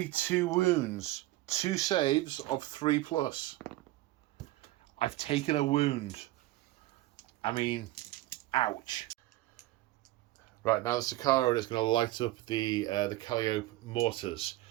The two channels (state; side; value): quieter; left; 17.3 dB